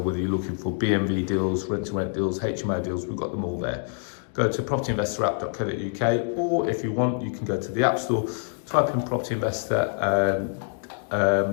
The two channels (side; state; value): right; silent; 61 dB below the other